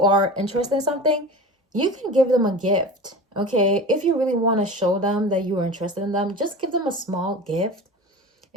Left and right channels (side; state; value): both; normal; correlation 0.33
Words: are interested in something, you can give them a gift. Okay, if you really want to show them that you are interested in them, just give them a small gift.